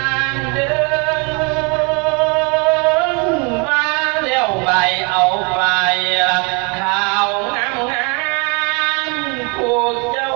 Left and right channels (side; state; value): left; quieter; 32.7 dB